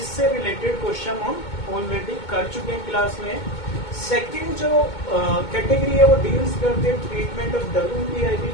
रिलेटेड क्वेश्चन हम ऑलरेडी कर चुके हैं क्लास में। सेकंड जो कैटेगरी है वो डील्स करते हैं ट्रीटमेंट ऑफ WIP,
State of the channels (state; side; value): late; right; 2.2 ms